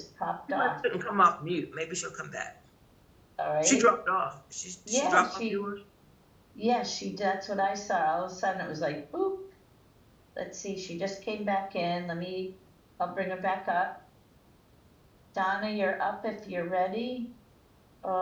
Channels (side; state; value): both; identical; correlation 1.00